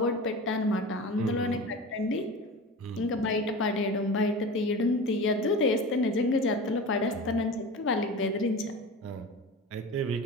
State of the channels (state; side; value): normal; both; correlation 0.32